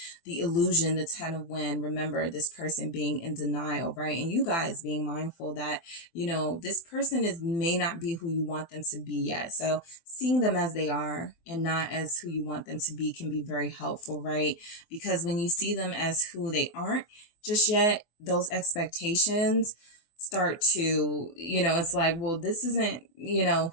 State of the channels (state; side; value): late; right; 24 ms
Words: The illusion, the 10 of Wind. Remember this person being in denial, right? And you guys being mindful that, this person may not be who you want them to be yet. So seeing them as they are and not as who you want them to be can be very helpful, right? Because when you see them as who they aren't just yet, those expectations start to, it's like, well, this isn't,